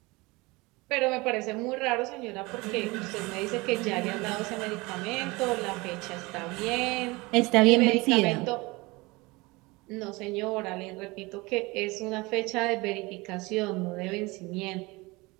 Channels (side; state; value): left; quieter; 23.7 dB